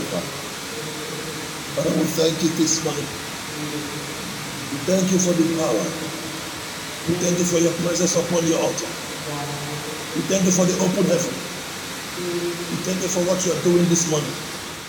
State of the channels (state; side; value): identical; both; correlation 1.00